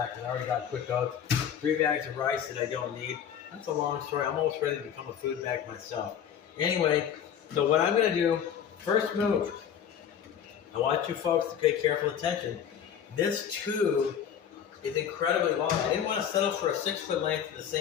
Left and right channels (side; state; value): right; quieter; 8.7 dB